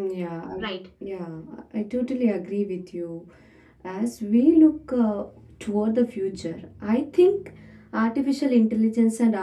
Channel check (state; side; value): identical; both; correlation 1.00